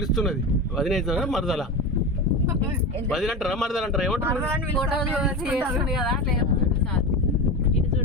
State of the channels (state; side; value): normal; both; correlation 0.24